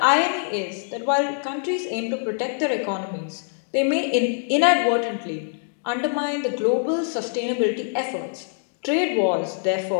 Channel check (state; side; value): silent; right; digital silence